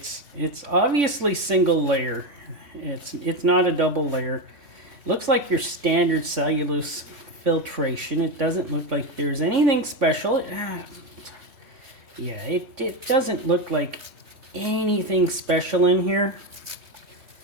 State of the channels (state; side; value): late; left; 3.5 ms